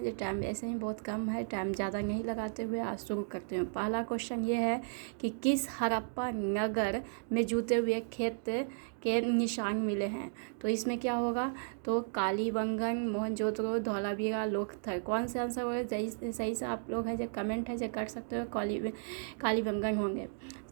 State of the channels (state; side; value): silent; left; digital silence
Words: जो टाइम ऐसे ही बहुत कम है, टाइम ज़्यादा नहीं लगाते हुए आज शुरू करते हैं। पहला क्वेश्चन ये है कि किस हड़प्पा नगर में जूते हुए खेत के निशान मिले हैं? तो इसमें क्या होगा? तो कालीबंगन, मोहनजोदड़ो, धौलावीरा, लोथल। कौन सा आंसर होगा? सही से आप लोग है जो कमेंट है जो कर सकते हो, कालीबंगन होंगे।